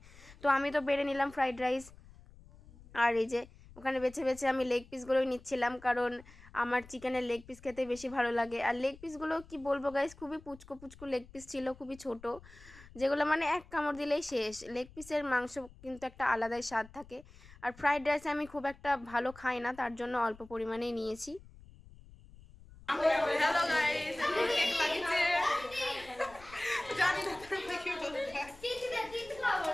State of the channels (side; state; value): left; noise; rumble, 21 dB below the sound